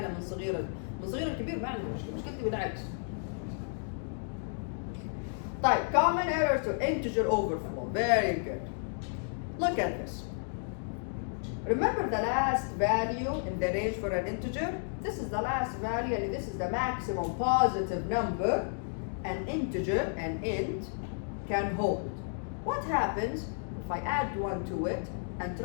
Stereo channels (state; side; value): silent; right; digital silence